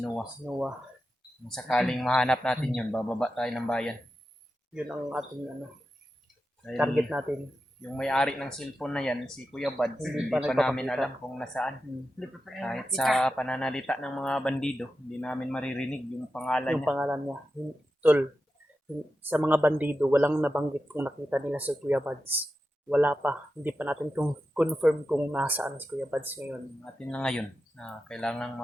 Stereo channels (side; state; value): both; normal; correlation 0.90